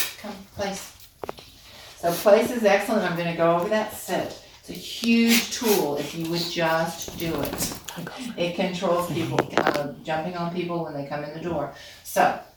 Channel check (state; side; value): identical; both; correlation 1.00